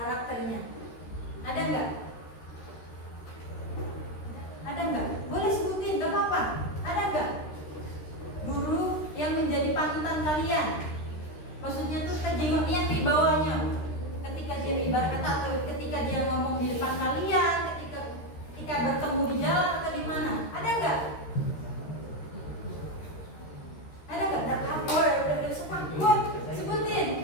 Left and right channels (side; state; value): right; late; 13 ms